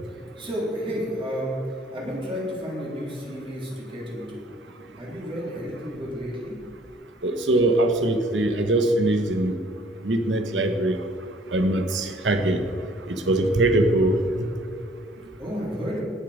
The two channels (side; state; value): both; normal; correlation 0.58